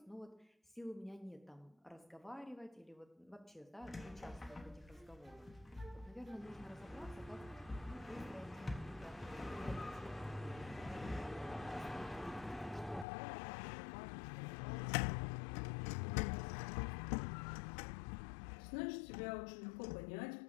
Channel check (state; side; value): drops out; right; at 13.1 s